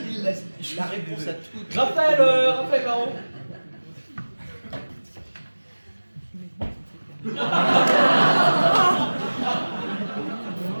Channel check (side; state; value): both; inverted; correlation -1.00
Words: Il laisse La réponse à tout. Raphaël Baron.